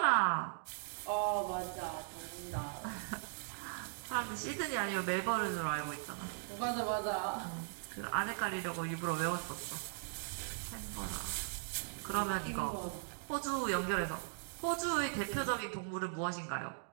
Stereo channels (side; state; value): left; silent; digital silence